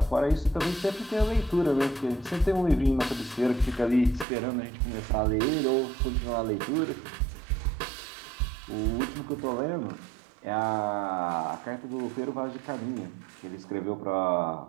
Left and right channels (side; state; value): left; drops out; at 4.2 s